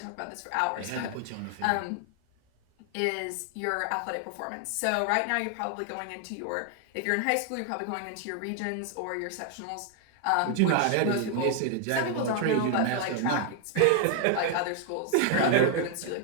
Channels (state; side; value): different; both; correlation 0.00